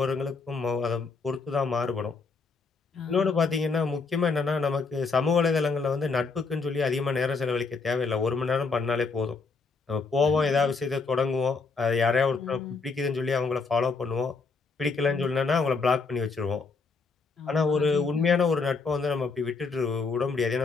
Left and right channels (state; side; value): quieter; right; 4.4 dB